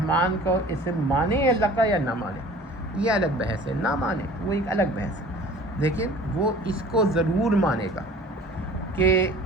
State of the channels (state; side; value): normal; both; correlation 0.45